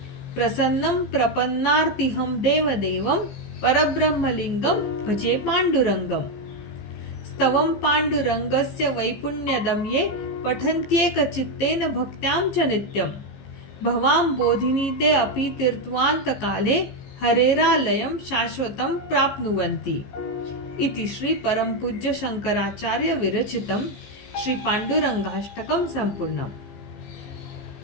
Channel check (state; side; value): late; right; 15 ms